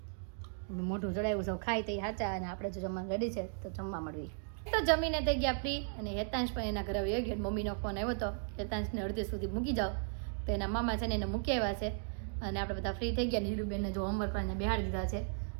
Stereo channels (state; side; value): silent; left; digital silence